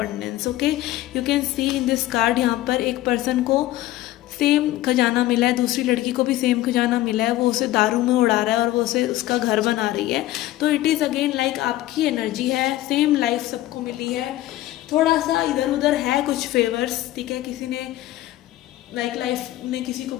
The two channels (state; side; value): quieter; right; 15.6 dB